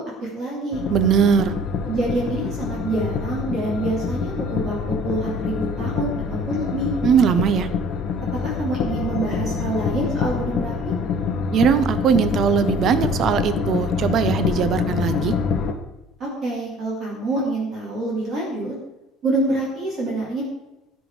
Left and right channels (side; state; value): both; normal; correlation 0.51